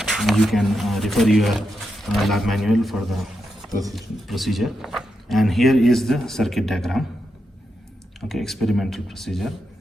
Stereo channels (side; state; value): both; normal; correlation 0.85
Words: You can refer your lab manual for the procedure. And here is the circuit diagram. Okay, experimental procedure.